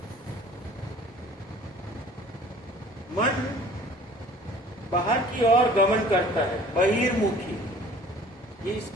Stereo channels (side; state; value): both; normal; correlation 0.49